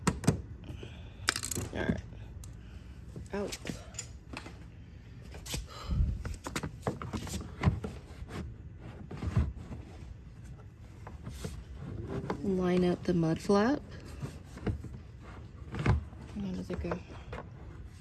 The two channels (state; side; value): identical; both; correlation 1.00